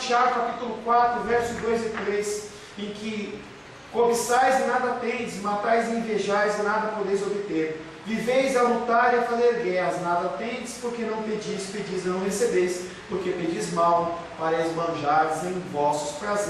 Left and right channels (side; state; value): both; identical; correlation 1.00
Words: Tiago capítulo 4, versos 2 e 3, em que cobiçais e nada tendes, matais e invejais e nada podeis obter. Viveis a lutar e a fazer guerras, nada tendes, porque não pedis, pedis e não recebeis, porque pedis mal, para esbanjardes em vossos